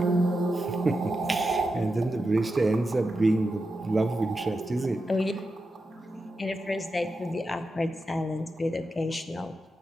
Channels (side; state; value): both; normal; correlation 0.89